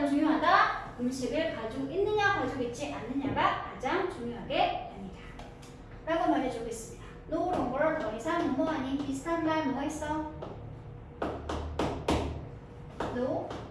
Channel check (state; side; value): identical; both; correlation 1.00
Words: 중요하다? 음식을 가지고 있느냐, 가지고 있지 않느냐가 가장 중요하게 됩니다. 라고 말해주고 있습니다. no longer, 더 이상 뭐뭐 아닌 비슷한 말 뭐가 있어? no,